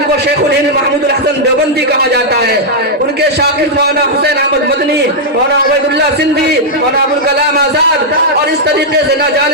کو شیخ الہند محمود الحسن دیوبندی کہا جاتا ہے، ان کے شاگرد مولانا حسین احمد مدنی، مولانا عبید اللہ سندھی، مولانا ابوالکلام آزاد، اور اس طریقے سے نہ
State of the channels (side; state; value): both; normal; correlation -0.05